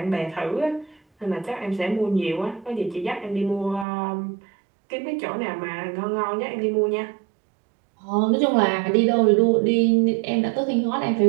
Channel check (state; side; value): drops out; left; at 3.9 s